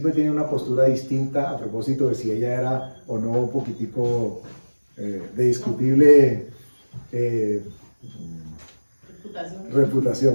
tienen una postura distinta a propósito de si ella era o no un poquitico de discutible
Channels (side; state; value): both; inverted; correlation -1.00